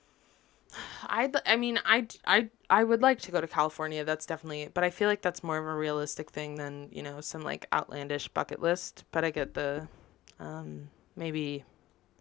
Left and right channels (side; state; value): right; quieter; 15.3 dB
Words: I would like to go to California. That's definitely... But I feel like that's more of a realistic thing than, some, like, outlandish bucket list. But I get the... maybe...